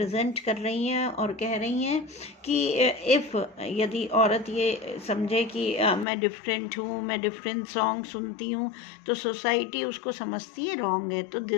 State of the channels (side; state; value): right; drops out; at 6.1 s